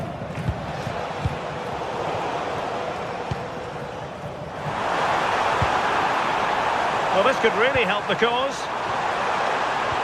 Well, this could really help the cause.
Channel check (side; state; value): both; identical; correlation 1.00